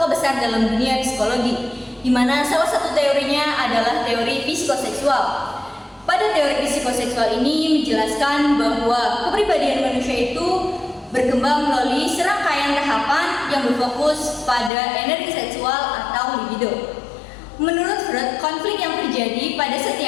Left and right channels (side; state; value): right; drops out; at 14.7 s